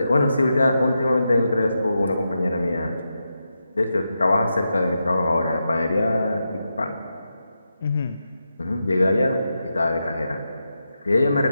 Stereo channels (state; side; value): inverted; both; correlation -0.87